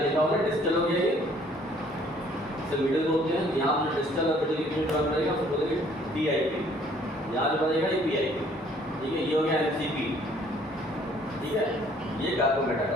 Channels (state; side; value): normal; both; correlation 0.60